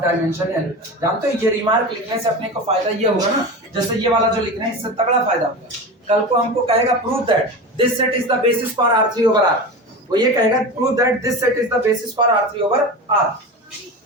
जानते हो ये रिमार्क लिखने से अपने को फायदा ये होगा ना, जैसे ये वाला जो लिख रहे हैं इससे तगड़ा फायदा होगा। कल को हमको कहेगा prove that this set is the basis for R3 over R, वो ये कहेगा prove that this set is the basis for R3 over R,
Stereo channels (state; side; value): normal; both; correlation 0.27